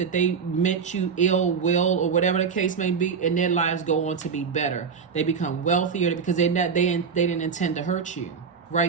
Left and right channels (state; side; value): quieter; left; 6.1 dB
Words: they meant you ill will or whatever the case may be, and their lives go on to be better. They become wealthier because they didn't intend to hurt you.